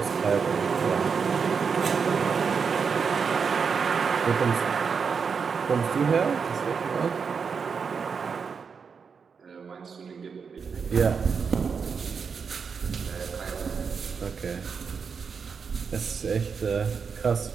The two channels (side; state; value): left; quieter; 5.9 dB